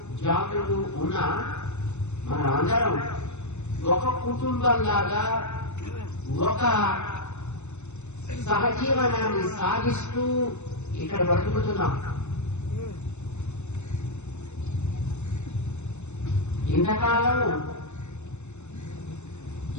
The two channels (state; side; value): late; right; 0.82 ms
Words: జాతులు ఉన్న మన అందరం ఒక కుటుంబంలాగా ఒక సహజీవనాన్ని సాగిస్తూ ఇక్కడ బ్రతుకుతున్నాం. ఇంతకాలం